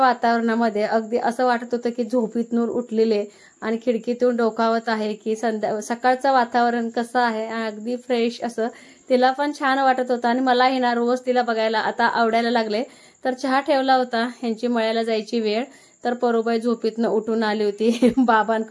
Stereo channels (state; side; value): identical; both; correlation 1.00